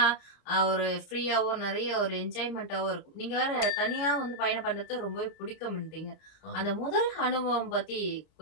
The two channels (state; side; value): late; right; 30 ms